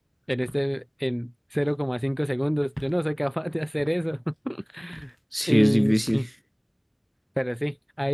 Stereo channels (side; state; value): both; identical; correlation 1.00